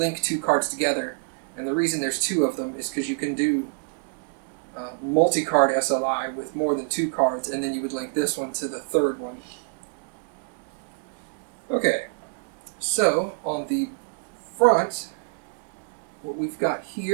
two cards together. And the reason there's two of them is because you can do multi-card SLI with more than two cards, and then you would link this one to the third one. Okay, so on the front, what we've got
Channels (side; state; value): left; silent; digital silence